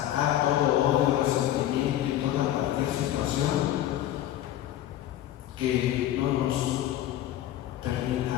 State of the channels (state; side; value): quieter; right; 12.7 dB